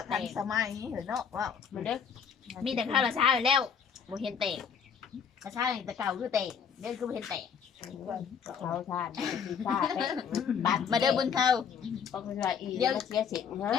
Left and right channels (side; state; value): right; quieter; 7.1 dB